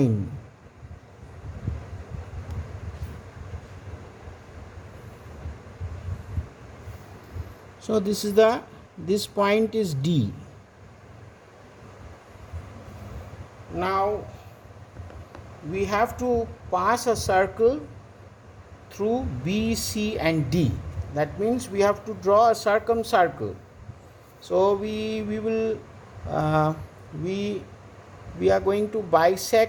So this point is D. Now we have to pass a circle through B, C and D. That means we have to draw a circumcircle. So we are going to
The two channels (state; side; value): identical; both; correlation 1.00